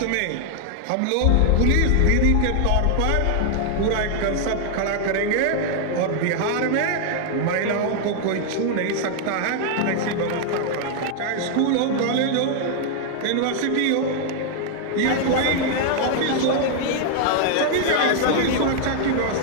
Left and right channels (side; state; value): both; different; correlation 0.00